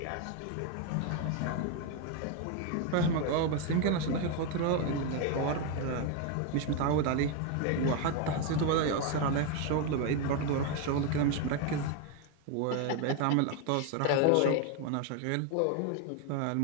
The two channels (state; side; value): different; both; correlation 0.01